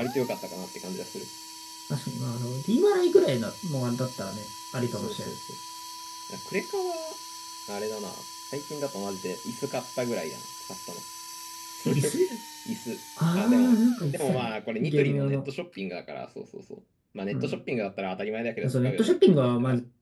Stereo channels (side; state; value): both; identical; correlation 1.00